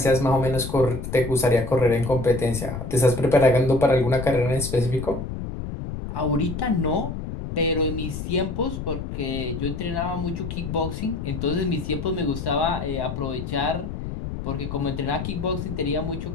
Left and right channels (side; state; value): left; noise; rumble, 6 dB below the sound